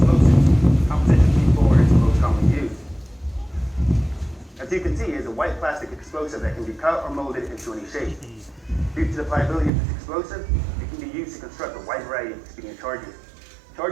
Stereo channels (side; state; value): left; drops out; at 9.7 s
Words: composition C4 is the most commonly used. As you can see, it is a white plastic explosive that can be cut or molded into any shape. Due to the pliability of this explosive, it can be used to construct a wide variety of expedient charges.